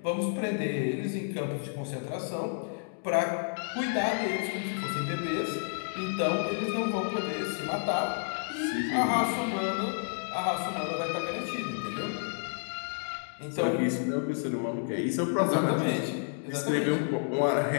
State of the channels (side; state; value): right; silent; digital silence